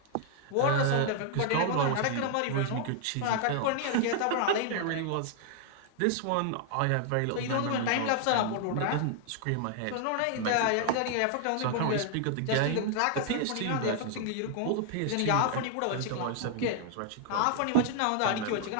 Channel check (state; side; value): different; both; correlation 0.00